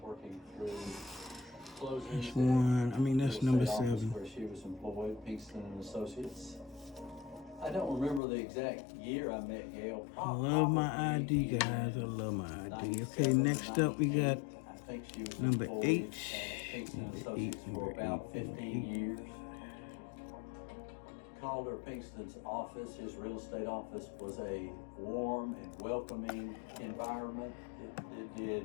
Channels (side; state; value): right; drops out; at 8.2 s